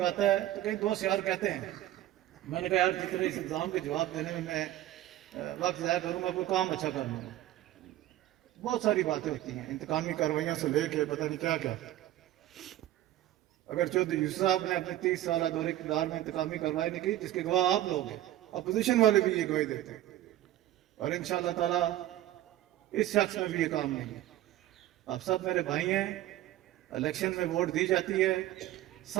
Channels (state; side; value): quieter; left; 14.2 dB